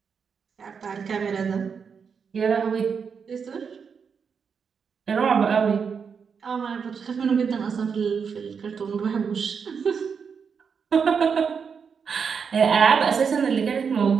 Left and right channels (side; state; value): left; quieter; 6.2 dB